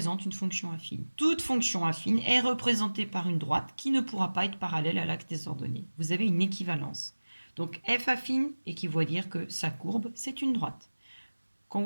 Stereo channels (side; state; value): both; inverted; correlation -1.00